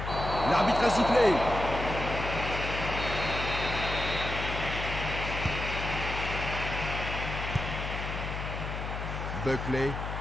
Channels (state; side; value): noise; left; hum, 5 dB below the sound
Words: L'arbitre a sifflé. Buckley.